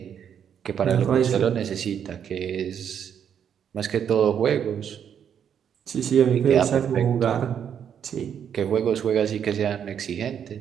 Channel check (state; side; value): quieter; left; 8.4 dB